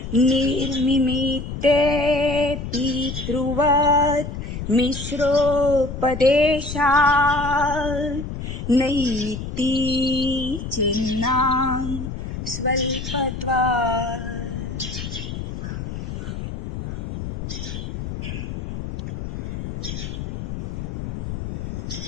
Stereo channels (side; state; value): left; noise; rumble, 6 dB below the sound